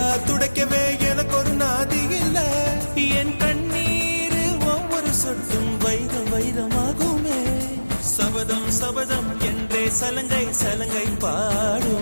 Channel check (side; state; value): both; inverted; correlation -1.00